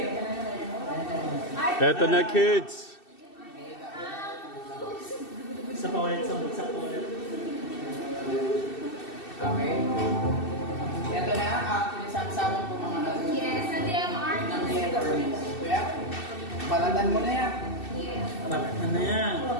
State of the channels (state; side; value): late; right; 2.7 ms